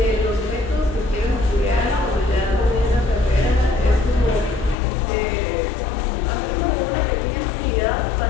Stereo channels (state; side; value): drops out; right; at 4.8 s